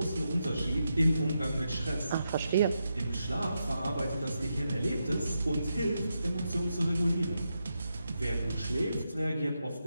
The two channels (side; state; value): both; inverted; correlation -0.85